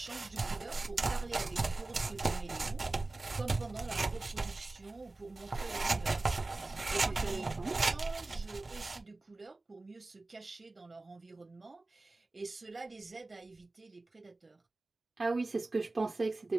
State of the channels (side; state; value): left; quieter; 3.1 dB